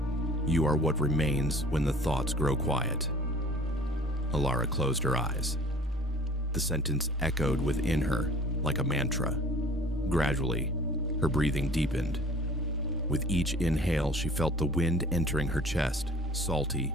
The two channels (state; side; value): normal; both; correlation 0.49